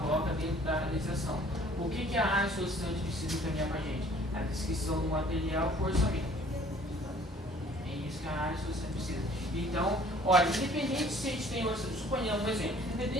dentro da administração. O que a área solicitante precisa encaminhar para a gente? A descrição do material por orçamento. É isso que a área solicitante precisa. Então, olha, independente se a gente tem orçamento, suponhamos um exemplo,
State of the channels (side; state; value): both; normal; correlation 0.55